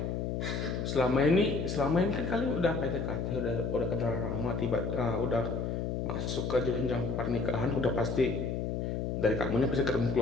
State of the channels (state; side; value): noise; left; hum, 1 dB below the sound